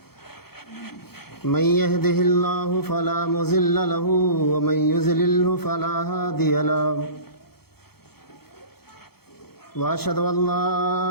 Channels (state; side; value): late; right; 0.96 ms